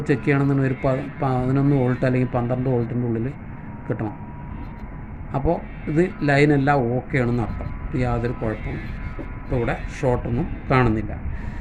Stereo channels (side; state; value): both; identical; correlation 1.00